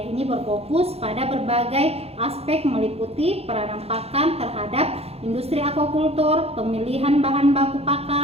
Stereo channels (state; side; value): late; left; 0.29 ms